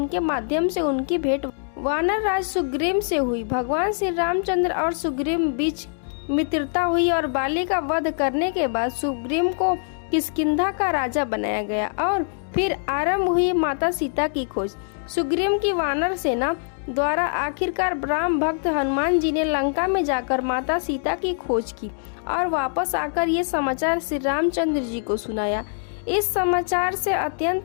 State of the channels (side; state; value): right; silent; digital silence